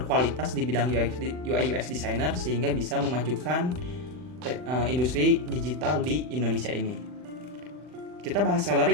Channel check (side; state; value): left; late; 39 ms